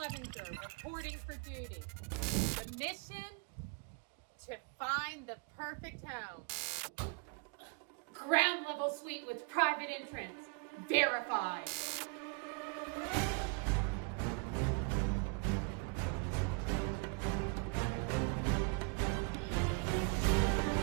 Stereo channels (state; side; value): quieter; left; 33.6 dB